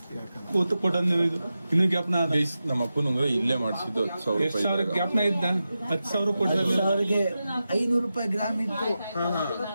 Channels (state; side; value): inverted; both; correlation -0.92